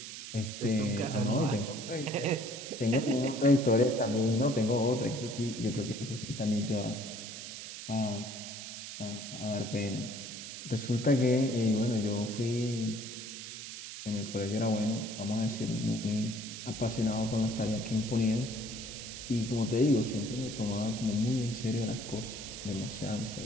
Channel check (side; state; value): right; noise; hiss, 9 dB below the sound